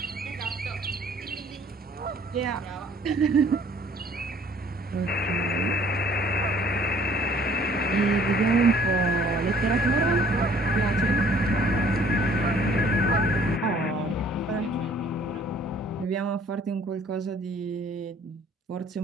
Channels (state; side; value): normal; both; correlation 0.57